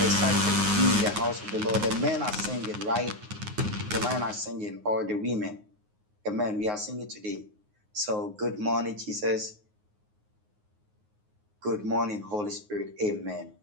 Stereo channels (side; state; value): left; late; 9.5 ms